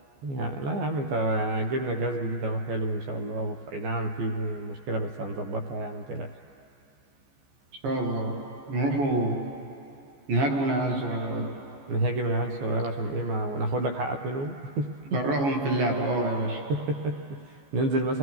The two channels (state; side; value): late; left; 14 ms